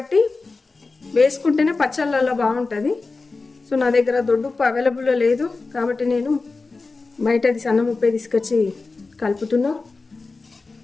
వేసుకుంటేనే పచ్చళ్ళల్లో బాగుంటుంది. సో నా దగ్గర దొడ్డుప్పు అవైలబుల్లో లేదు కాబట్టి నేను బయటది సన్న ఉప్పే తీసుకొచ్చి కలుపుతున్నా.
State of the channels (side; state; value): right; quieter; 3.9 dB